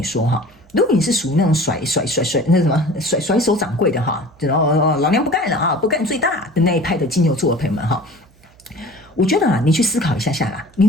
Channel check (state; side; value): noise; right; hum, 29 dB below the sound